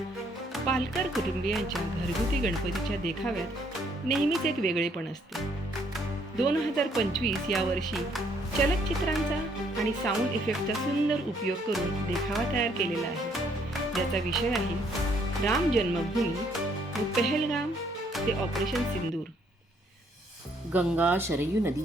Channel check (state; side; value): normal; both; correlation 0.67